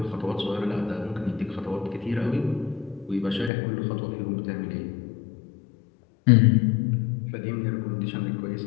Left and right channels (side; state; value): right; drops out; at 3.5 s